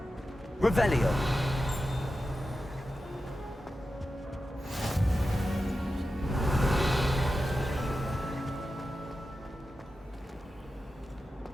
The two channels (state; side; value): normal; both; correlation 0.92